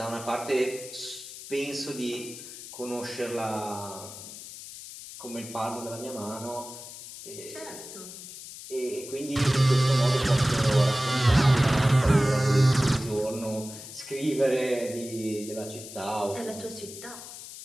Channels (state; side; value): noise; left; hiss, 13 dB below the sound